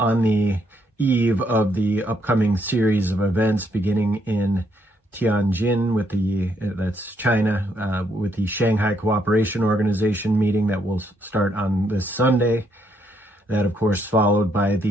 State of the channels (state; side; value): normal; both; correlation 0.73